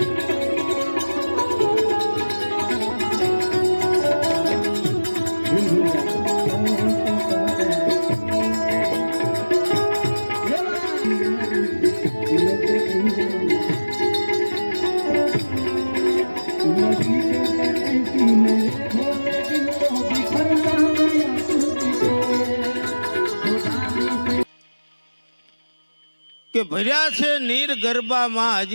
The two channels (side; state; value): both; inverted; correlation -1.00